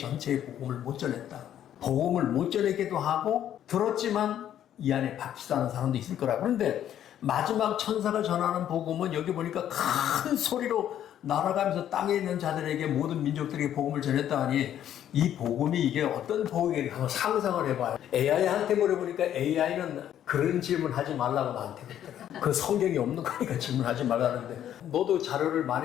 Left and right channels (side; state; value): right; quieter; 10.8 dB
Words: 복음을 못 전했다. 복음을 못 전하기도 하고 들었지만 이 안에 박히지 않은 사람도 있을 거라. 그런데 마지막 천사가 전하는 복음은 여기 보니까 큰 소리로 날아가면서 땅에 있는 자들에게 모든 민족들에게 복음을 전했다 하니 이 복음이 이게 어떤 복음인가 한번 상상을 해봐요. AI한테 물어보니까 AI는 그런 질문 하지 말라고 나한테 그랬더라. 그 성경이 없는 거니까 질문하지 말라는데 너도 자료를